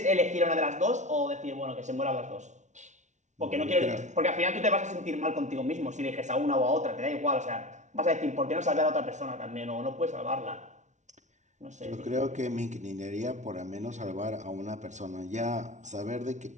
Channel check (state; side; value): late; left; 0.35 ms